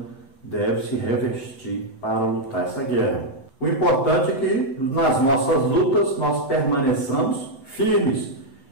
deve se revestir para lutar essa guerra. O importante é que nas nossas lutas nós permaneçamos firmes.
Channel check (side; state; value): right; late; 7.8 ms